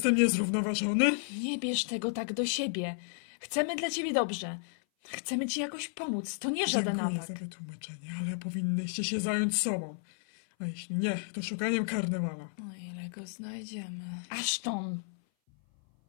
niezrównoważony? Nie bierz tego tak do siebie. Chcemy dla ciebie dobrze. Chcemy ci jakoś pomóc. To nie żaden Dziękuję atak. za wytłumaczenie, ale powinnyście się zająć sobą. A jeśli nie, to szukaniem karnewala. O ile go znajdziemy. Ashton!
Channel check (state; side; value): silent; right; 56 dB below the other